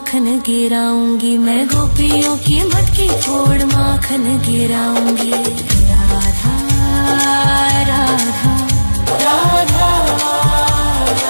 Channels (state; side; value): inverted; both; correlation -1.00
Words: गिराऊंगी। मैं गोपियों की मटकी फोड़ माखन गिराऊंगी। राधा राधा राधा